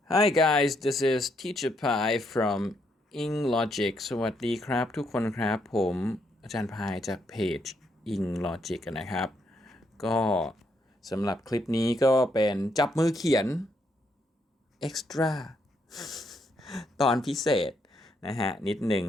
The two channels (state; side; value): normal; both; correlation 0.75